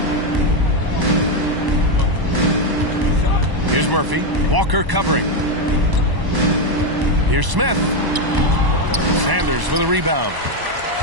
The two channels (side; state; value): left; late; 1.0 ms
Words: Here's Murphy. Walker covering. Here's Smith. Sanders with a rebound.